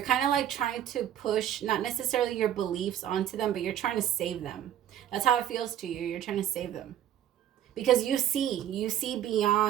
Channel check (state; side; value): quieter; left; 10.9 dB